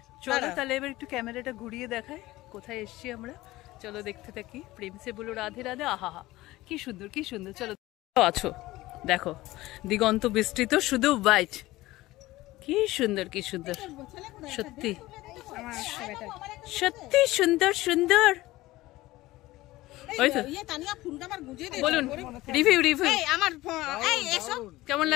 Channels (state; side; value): quieter; right; 18.0 dB